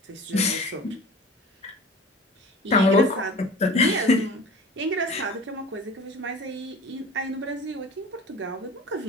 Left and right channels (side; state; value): both; normal; correlation 0.40